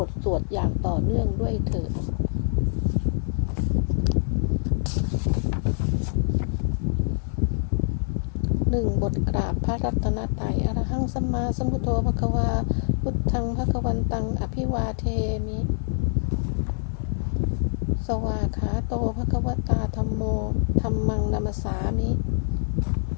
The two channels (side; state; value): right; silent; 62 dB below the other